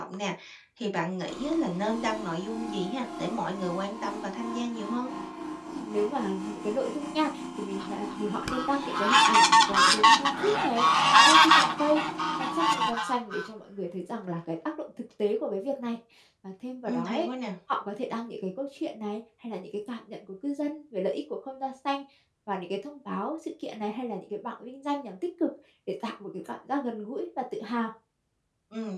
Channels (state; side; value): identical; both; correlation 1.00